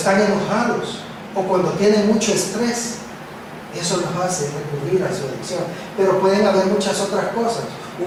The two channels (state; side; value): identical; both; correlation 1.00